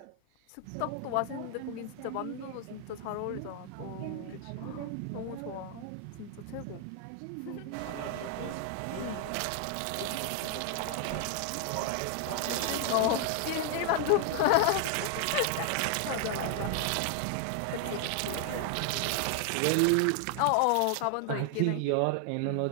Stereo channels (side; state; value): both; different; correlation 0.00